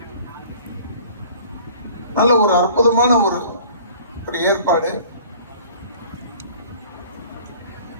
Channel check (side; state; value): both; inverted; correlation -0.49